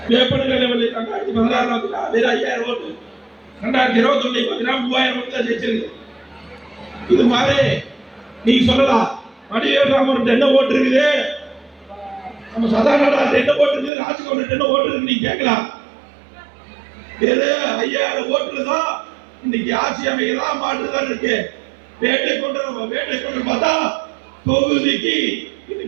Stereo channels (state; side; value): drops out; left; at 13.9 s